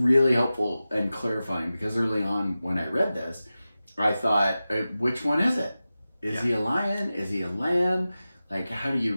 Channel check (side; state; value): both; inverted; correlation -0.95